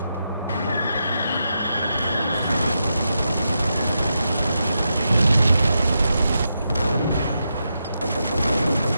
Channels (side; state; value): both; inverted; correlation -0.85